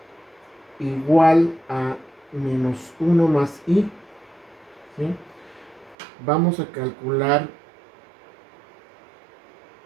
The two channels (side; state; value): left; drops out; at 6.0 s